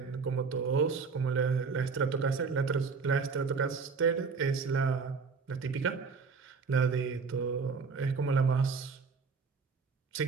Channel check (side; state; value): left; quieter; 5.0 dB